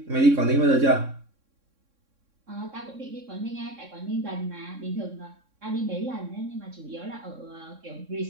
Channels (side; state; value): left; late; 3.6 ms